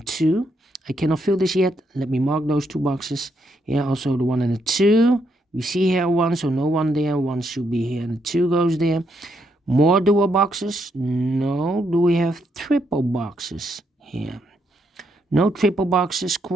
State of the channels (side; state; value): both; normal; correlation 0.77